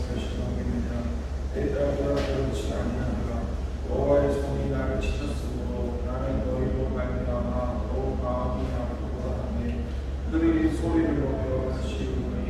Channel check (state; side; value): identical; both; correlation 1.00